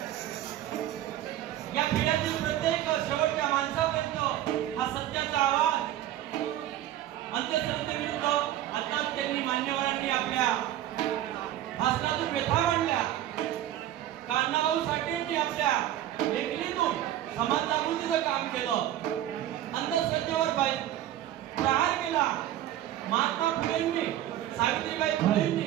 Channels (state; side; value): quieter; left; 12.7 dB